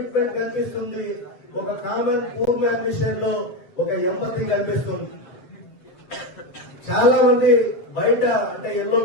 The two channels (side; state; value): right; late; 7.5 ms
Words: కనిపిస్తుంది. ఒక కామన్ పూర్ మ్యాన్ విషయంలో ఒక ఎంపతి కనిపిస్తుంది. చాలా మంది బయట, అంటే ఎల్లో